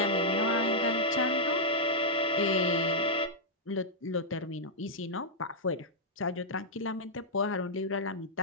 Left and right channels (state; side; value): normal; both; correlation -0.08